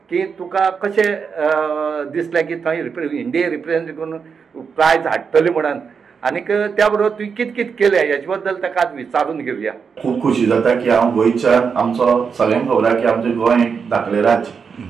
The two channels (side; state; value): left; quieter; 6.0 dB